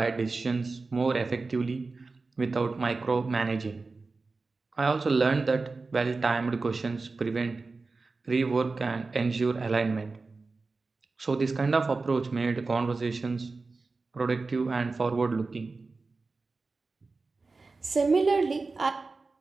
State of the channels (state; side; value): quieter; left; 3.9 dB